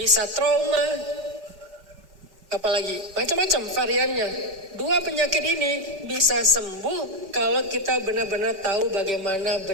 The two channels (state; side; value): late; left; 5.2 ms